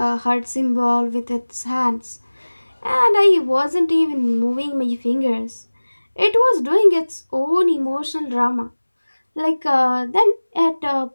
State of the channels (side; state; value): both; inverted; correlation -1.00